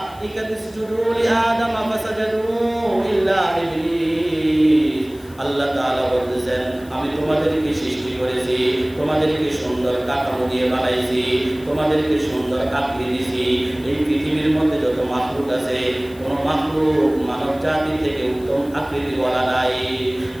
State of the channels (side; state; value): left; noise; hiss, 25 dB below the sound